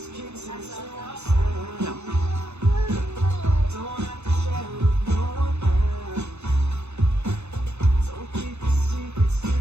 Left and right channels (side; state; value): left; late; 0.81 ms